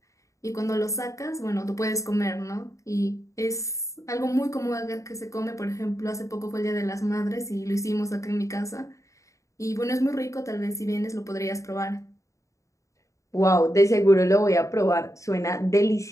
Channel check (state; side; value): late; right; 0.15 ms